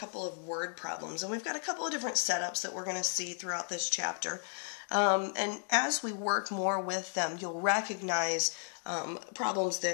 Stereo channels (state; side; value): silent; right; 55 dB below the other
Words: of word problems, and we've got a couple of different setups that we're going to see throughout this chapter. And as we work more with them, you'll recognize problems